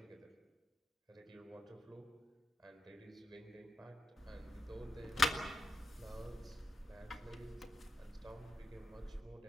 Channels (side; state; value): both; normal; correlation 0.85